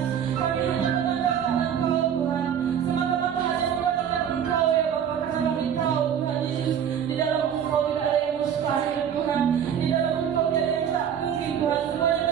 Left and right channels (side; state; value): left; quieter; 8.7 dB